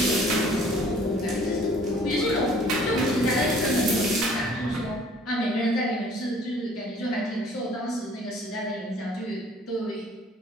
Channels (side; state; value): both; normal; correlation 0.55